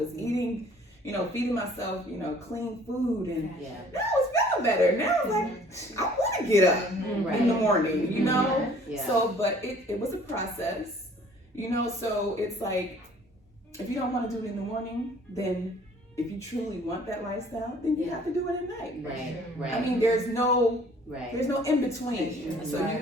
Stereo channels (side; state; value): both; normal; correlation 0.55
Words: eating, feeding myself, clean food, and now I was feeling better. Now I was like, I want to get up in the morning, So, but it was a process, so it's like, if you don't want to do it in the morning, then if you truly want that lifestyle, then you have to do it at night. Right. I mean, there's no in between. So